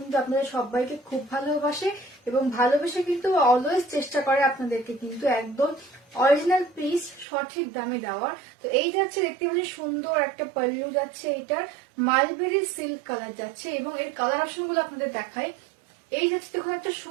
আপনাদের সবাইকে খুব ভালোবাসে এবং ভালোবেসে কিন্তু অলওয়েজ চেষ্টা করে আপনাদেরকে কিন্তু একদম অরিজিনাল পিস সঠিক দামে দেওয়ার। তো এই যাচ্ছে, দেখতে পাচ্ছি সুন্দর একটা পাল্লু যাচ্ছে, এইটার মালবেরি সিল্ক কালার যাচ্ছে এবং এই কালার অপশন গুলো আপনাদের দেখায়। এই যাচ্ছে দেখুন একটা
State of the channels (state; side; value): drops out; left; at 7.2 s